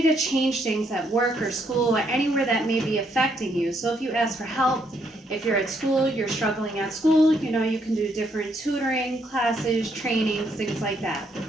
to change things at work or school or anywhere that may be affecting you. So if you ask for help, if you're at school, you're struggling at school, you can do different tutoring, classes, trainings, things like that.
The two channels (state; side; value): normal; both; correlation 0.73